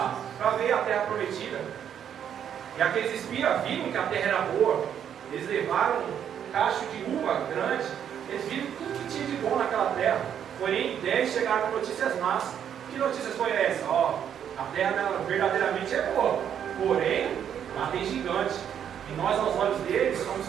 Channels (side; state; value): left; quieter; 9.0 dB